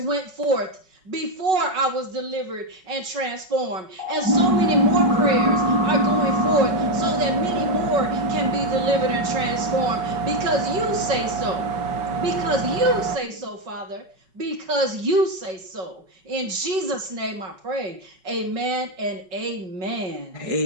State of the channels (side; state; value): left; late; 5.3 ms